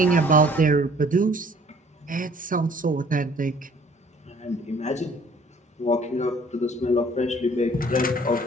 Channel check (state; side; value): normal; both; correlation 0.56